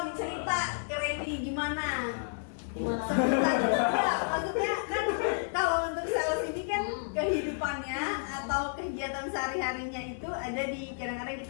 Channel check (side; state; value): right; silent; digital silence